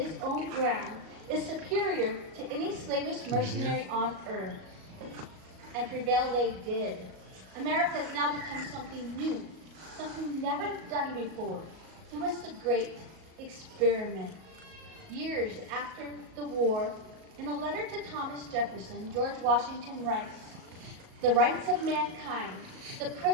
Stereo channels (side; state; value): left; late; 37 ms